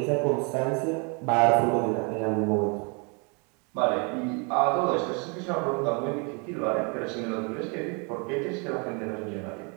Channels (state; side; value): quieter; left; 33.9 dB